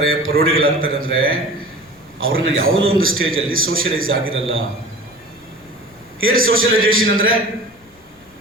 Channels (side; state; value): left; noise; rumble, 28 dB below the sound